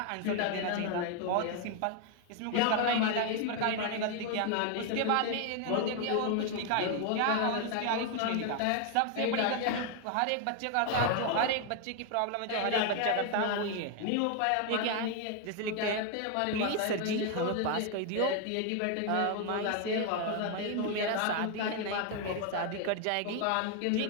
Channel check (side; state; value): both; different; correlation 0.01